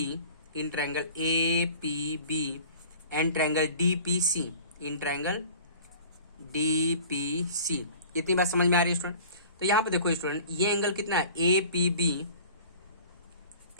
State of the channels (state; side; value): inverted; both; correlation -0.44